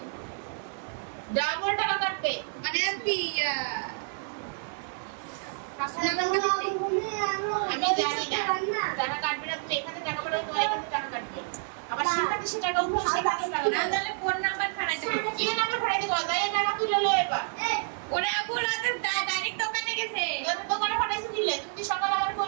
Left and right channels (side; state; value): left; silent; 59 dB below the other